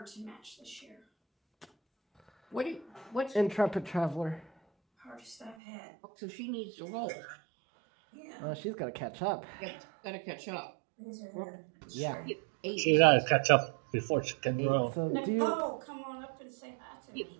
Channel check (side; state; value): left; drops out; at 5.6 s